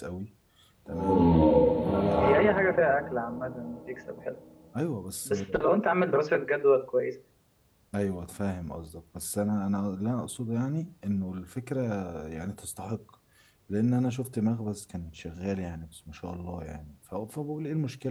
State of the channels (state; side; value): identical; both; correlation 1.00